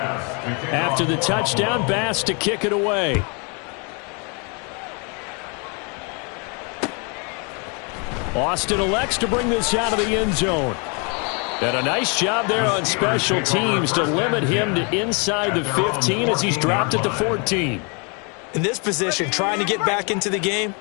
After the touchdown, Bass to kick it away. Austin elects to bring this out of the end zone. And a nice job there on special teams to limit him to inside the 15 as he's dropped it to 14. In this position, trying to get back into the game,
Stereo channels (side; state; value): right; quieter; 34.6 dB